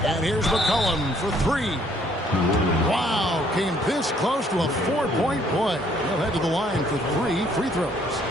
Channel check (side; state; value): both; normal; correlation 0.64